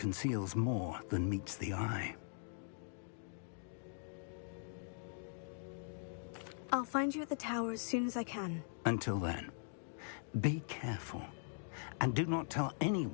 more than meets the eye. I'll find you at the tower as soon as I can. Until then, be careful, and do not tell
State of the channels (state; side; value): silent; right; digital silence